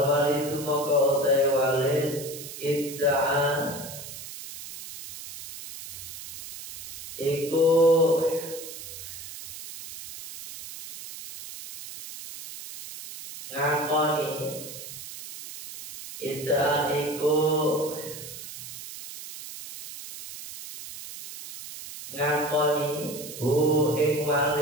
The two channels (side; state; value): right; noise; hiss, 12 dB below the sound